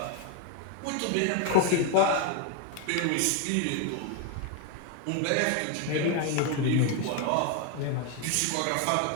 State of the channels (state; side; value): different; both; correlation 0.01